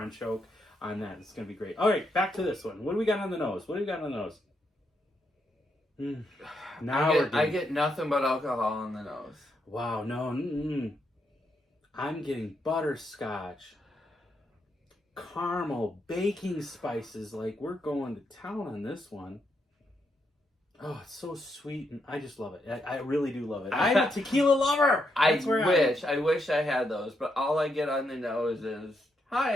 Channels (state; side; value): normal; both; correlation 0.80